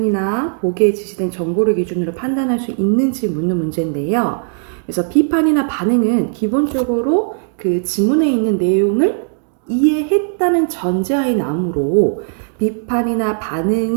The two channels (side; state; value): left; silent; digital silence